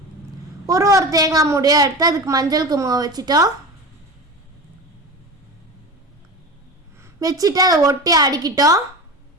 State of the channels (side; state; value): both; normal; correlation 0.28